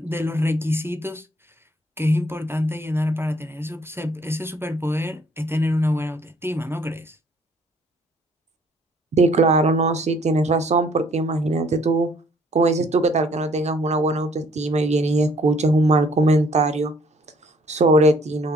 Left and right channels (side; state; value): both; normal; correlation 0.62